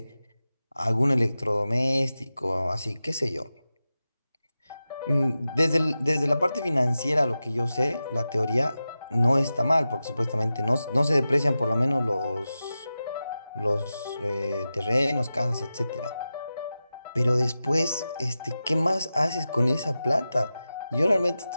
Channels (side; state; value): both; inverted; correlation -0.93